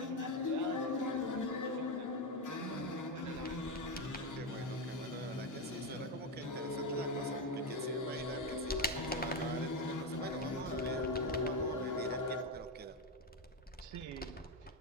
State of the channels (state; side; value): normal; both; correlation 0.11